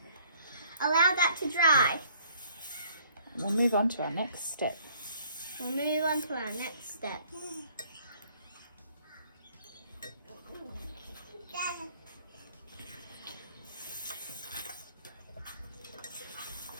Allow that to dry. We'll move on to our next step. We'll move on to our next step.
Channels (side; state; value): both; inverted; correlation -0.60